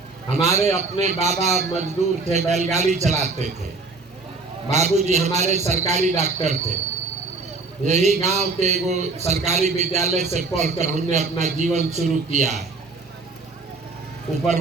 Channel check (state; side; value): quieter; left; 3.9 dB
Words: हमारे अपने बाबा मजदूर थे, बैलगाड़ी चलाते थे। बाबूजी हमारे सरकारी डॉक्टर थे। यही गांव के वो सरकारी विद्यालय से पढ़कर हमने अपना जीवन शुरू किया है। ऊपर